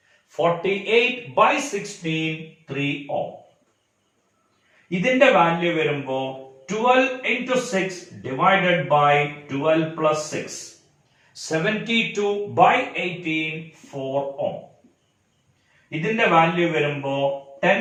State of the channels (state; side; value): identical; both; correlation 1.00